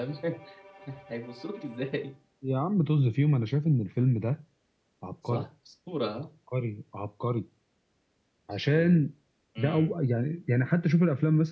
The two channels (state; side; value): identical; both; correlation 1.00